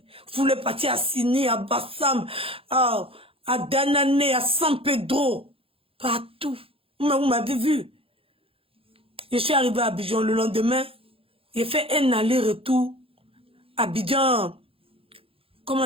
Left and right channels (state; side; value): late; left; 0.27 ms